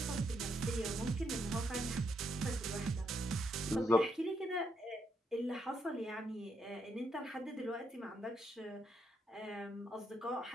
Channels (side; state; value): both; normal; correlation 0.77